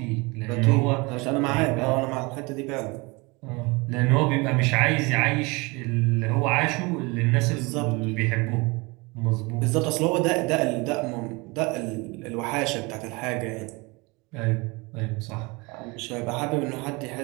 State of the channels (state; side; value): quieter; left; 26.2 dB